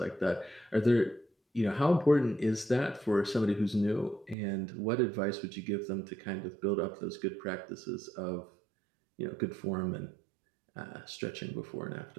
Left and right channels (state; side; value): drops out; left; at 4.4 s